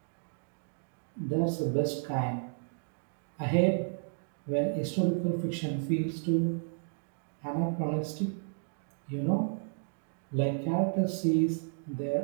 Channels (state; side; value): silent; left; digital silence